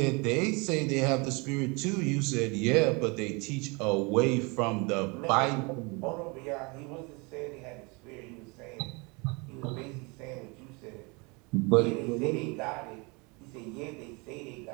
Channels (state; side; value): quieter; left; 29.0 dB